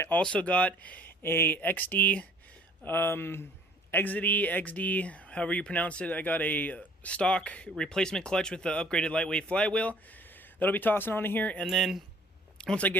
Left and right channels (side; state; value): both; normal; correlation 0.54